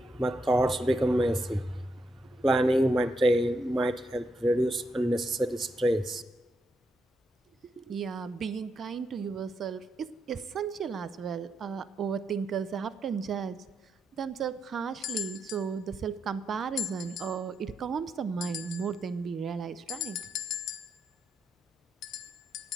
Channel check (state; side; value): normal; both; correlation 0.82